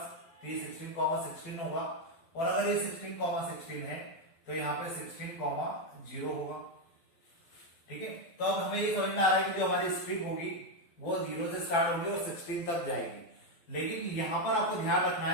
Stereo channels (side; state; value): right; late; 12 ms